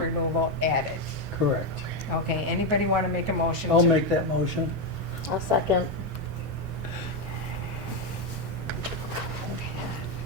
added. correct. Okay, anybody want to make a motion? I'll to- make that motion. I'll second.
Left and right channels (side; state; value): both; normal; correlation 0.07